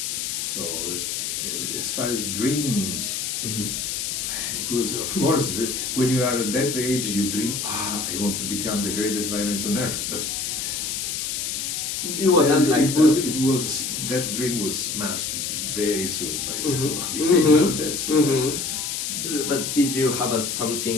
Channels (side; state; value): left; noise; hiss, 2 dB below the sound